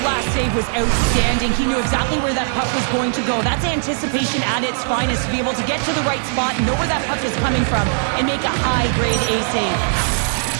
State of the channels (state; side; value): silent; left; digital silence